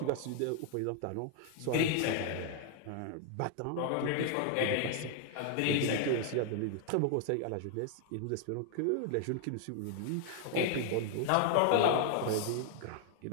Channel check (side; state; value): both; different; correlation 0.00